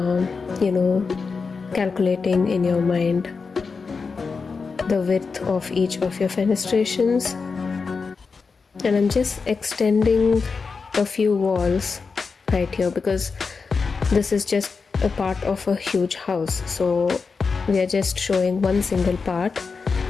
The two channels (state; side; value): quieter; right; 4.8 dB